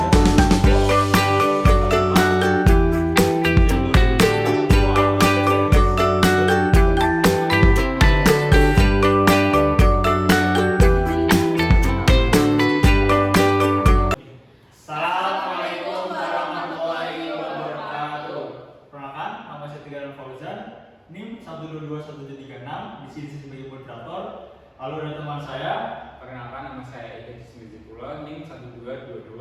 Assalamualaikum warahmatullahi wabarakatuh. Perkenalkan, nama saya Tigaran Fauzan, NIM 1221736, di sini sebagai moderator. Lalu ada teman saya. Perkenalkan, nama saya Eka Jismizipula, NIM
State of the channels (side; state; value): both; identical; correlation 1.00